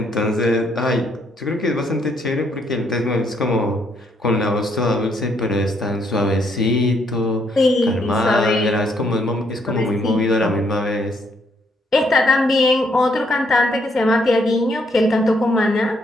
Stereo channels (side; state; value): both; normal; correlation 0.72